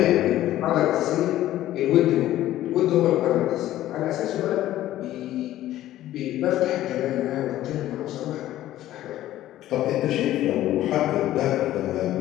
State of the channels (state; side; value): quieter; right; 13.9 dB